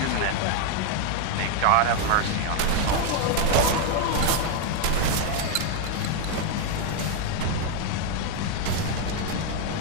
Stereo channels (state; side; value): different; both; correlation 0.01